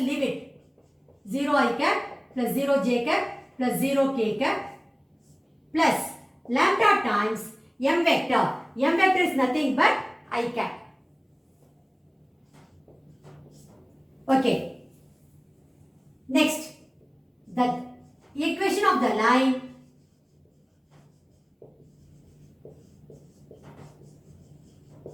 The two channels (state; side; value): identical; both; correlation 1.00